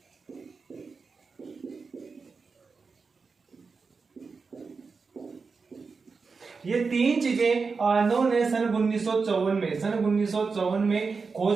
ये तीन चीजें आर्नोल्ड ने सन 1954 में खोज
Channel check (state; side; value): quieter; left; 4.8 dB